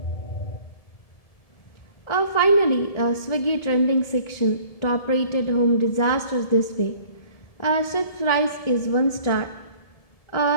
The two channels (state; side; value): late; right; 1.7 ms